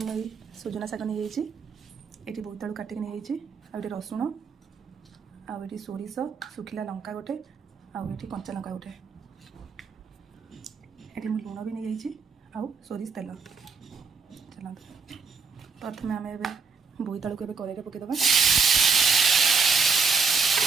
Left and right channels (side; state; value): left; quieter; 5.0 dB